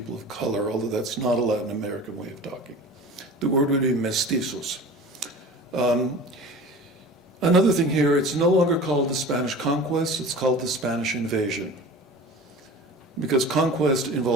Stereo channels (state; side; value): normal; both; correlation 0.38